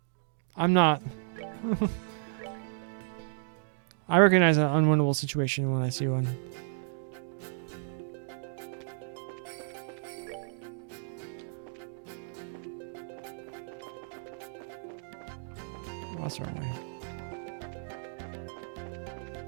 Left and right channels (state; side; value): silent; left; digital silence